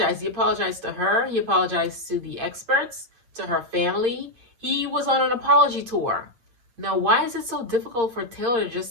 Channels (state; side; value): late; left; 8.7 ms